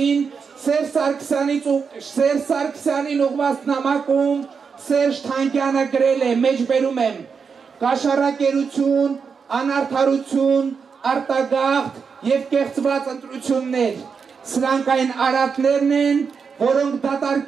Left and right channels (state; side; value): quieter; left; 5.8 dB